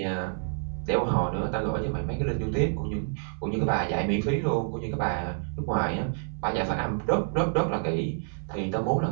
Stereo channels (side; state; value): left; silent; 58 dB below the other